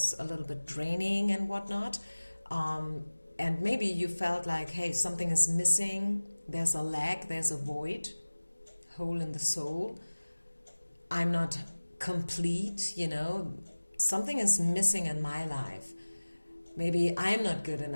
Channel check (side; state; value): both; inverted; correlation -1.00